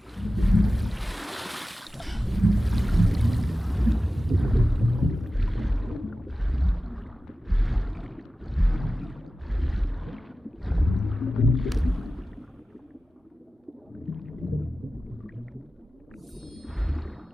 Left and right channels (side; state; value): both; normal; correlation 0.95